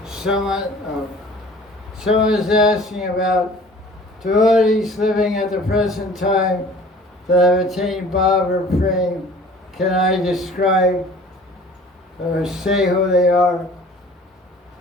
Someone is asking about devotees living at the present time that have attained Bhav or Prem. Can I describe or say who they are?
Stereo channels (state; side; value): normal; both; correlation 0.48